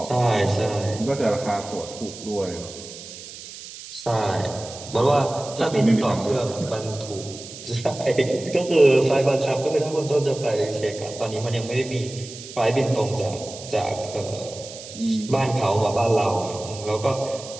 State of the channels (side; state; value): right; noise; hiss, 14 dB below the sound